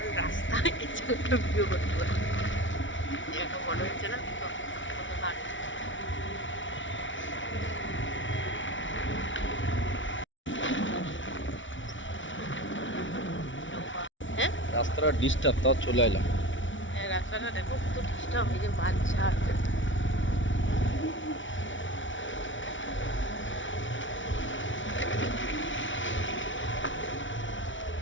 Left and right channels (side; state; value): right; late; 0.56 ms